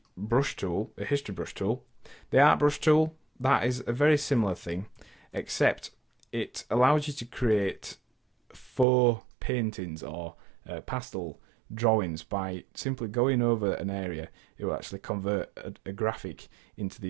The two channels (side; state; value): left; drops out; at 8.8 s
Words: brush tool, a history brush tool. The art brush tool, that is a very similar thing, except it allows you to create faux paintings or pastel drawings by simply going over an area. It will actually convert a graphic into